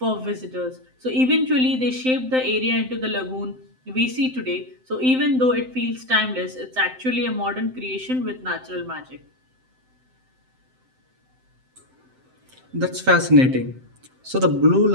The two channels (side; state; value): left; late; 7.8 ms